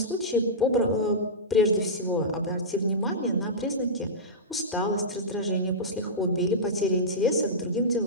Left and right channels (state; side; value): normal; both; correlation -0.15